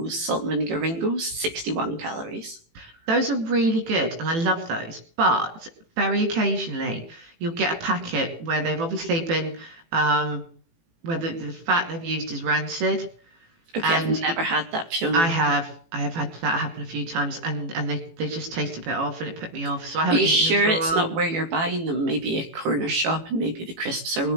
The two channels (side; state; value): left; late; 18 ms